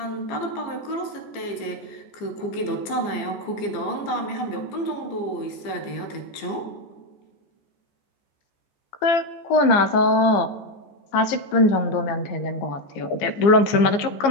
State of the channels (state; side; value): late; right; 15 ms